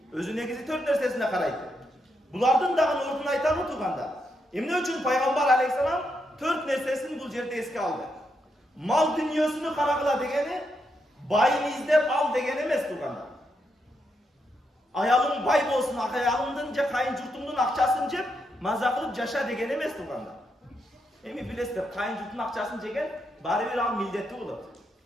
Özü negizi 4 nersesine karaydı. Bulardın dağın ortunu aytamı tuğanda. Emne üçün Peygamber Aleyhisselam 4 nersesini bu yerde eski aldı. Mal dünyasını karagıla degeni, bayını izlep al degeni emes tuğanda. Ayalın bay bolsun, ayalındınca kayın jurtumdun akçaсын jep, maza kılıp yaşa degeni emes tuğanda. Emi bilesizler, kayın jurtun akçaсын jegen, bari bir al mildetli oladı.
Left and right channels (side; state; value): both; normal; correlation 0.81